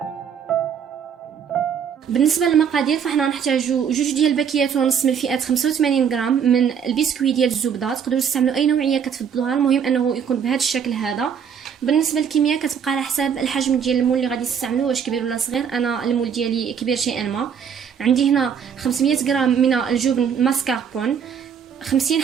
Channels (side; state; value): left; quieter; 7.5 dB